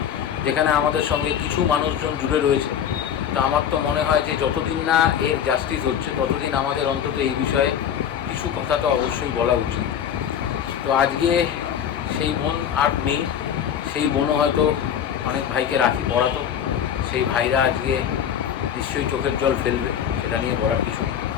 যেখানে আমাদের সঙ্গে কিছু মানুষজন জুড়ে রয়েছে, তো আমার তো মনে হয় যে যতদিন না এর জাস্টিস হচ্ছে ততদিন আমাদের অন্তত এই বিষয়ে কিছু কথা তো অবশ্যই বলা উচিত। তো আজকে সেই বোন আর নেই, সেই বোনও হয়তো অনেক ভাইকে রাখি পড়াতো, সেই ভাইরা আজকে নিশ্চয়ই চোখের জল ফেলবে, সেটা নিয়ে বলার কিছু নেই।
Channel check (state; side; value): quieter; right; 8.9 dB